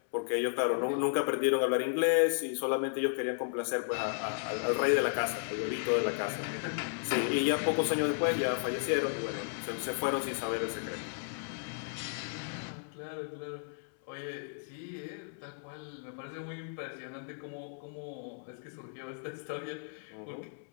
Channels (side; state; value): right; silent; 55 dB below the other